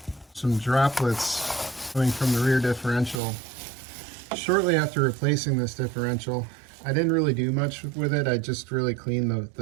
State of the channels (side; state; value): left; drops out; at 3.2 s